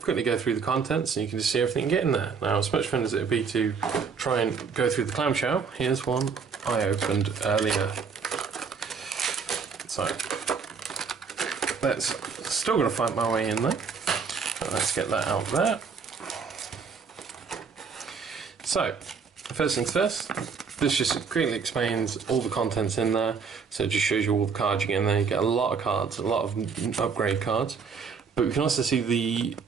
quickly go through the contents, and you can just see everything you get in there. Now, as much fun as it would be to try and go through the clamshell, here's one I opened earlier. So, still got to find my way in there. So let's get that out there. So, first things first, this just quickly explains all the contents in there. So it just shows you all the cards you get in there. You get a lot of cards, a lot of upgrade cards. But we can also see the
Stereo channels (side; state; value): left; quieter; 5.7 dB